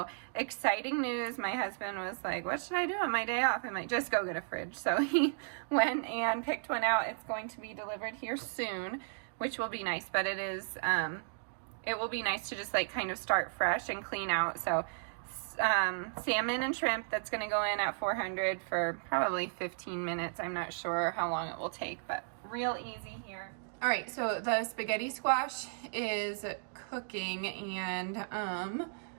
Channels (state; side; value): silent; left; digital silence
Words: exciting news. My husband was like, what should I do on my day off? I'm like, just go get a fridge. So he went and picked one out. It's going to be delivered here soon, which will be nice, but it will be nice to just like kind of start fresh and clean out. So salmon and shrimp, that's going to go in at 400 for probably 15 minutes. I'm not sure how long it will take, but real easy here. All right, so the spaghetti squash is cooking and I